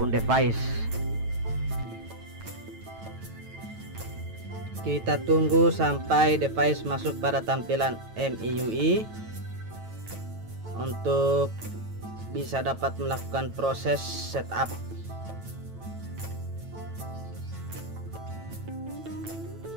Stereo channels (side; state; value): left; late; 9.1 ms